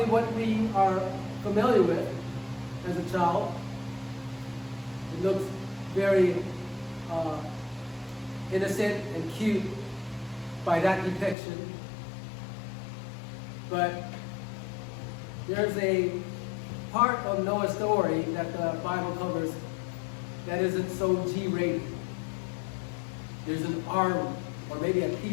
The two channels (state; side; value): drops out; right; at 11.4 s